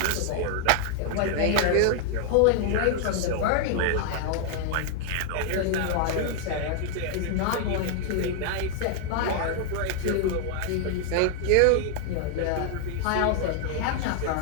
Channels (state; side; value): different; both; correlation 0.00